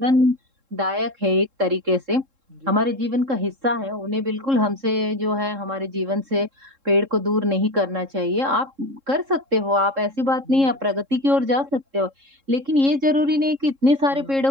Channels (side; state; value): left; late; 3.7 ms